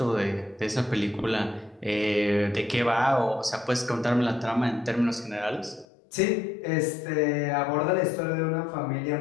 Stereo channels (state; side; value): drops out; right; at 5.9 s